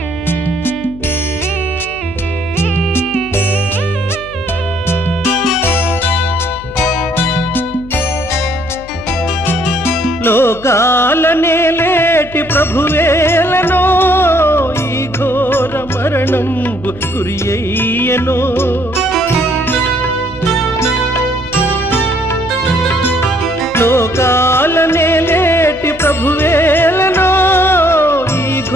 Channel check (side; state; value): left; noise; hum, 18 dB below the sound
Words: లోకాలనే లేటి ప్రభువేలనో ఈ ఘోర మరణంబు గురియయ్యనో లోకాలనే లేటి ప్రభువేలనో ఈ